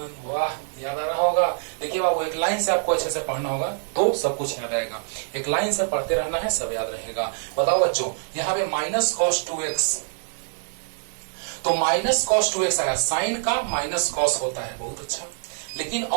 वाह याद आ रहा होगा। देखिए बाबू एक लाइन से आपको अच्छे से पढ़ना होगा तो सब कुछ याद आएगा, एक लाइन से पढ़ते रहना है, सब याद रहेगा। बताओ बच्चों यहाँ पे माइनस कॉस 2x, तो माइनस कॉस 2x आया, साइन का माइनस कॉस होता है, बहुत अच्छा, लेकिन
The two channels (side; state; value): left; silent; digital silence